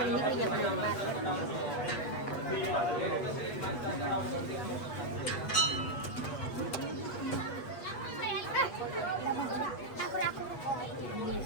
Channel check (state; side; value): late; right; 8.1 ms